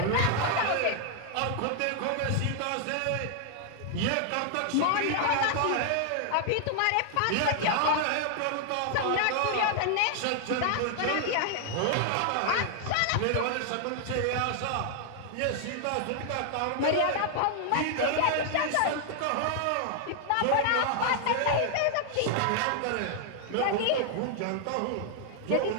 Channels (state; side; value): different; both; correlation 0.00